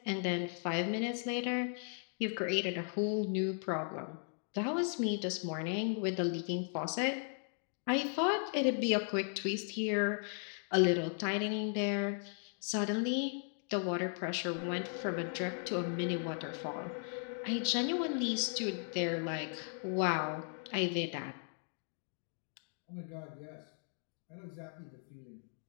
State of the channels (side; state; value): right; silent; 53 dB below the other